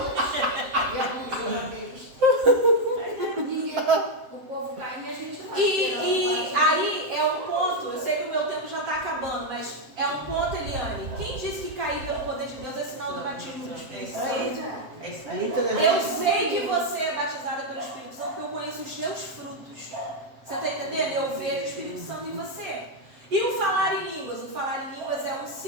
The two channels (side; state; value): left; late; 7.5 ms